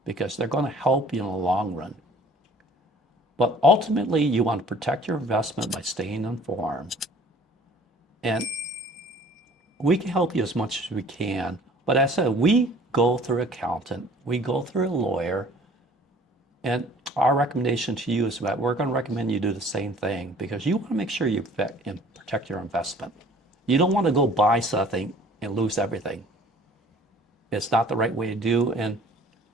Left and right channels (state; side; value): normal; both; correlation 0.51